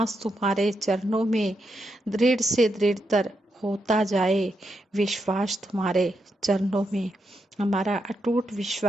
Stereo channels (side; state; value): both; normal; correlation 0.83